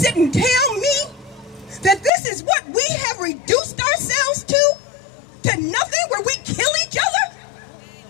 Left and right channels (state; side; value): drops out; right; at 2.1 s